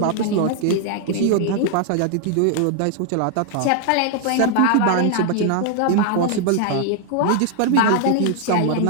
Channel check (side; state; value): both; different; correlation 0.00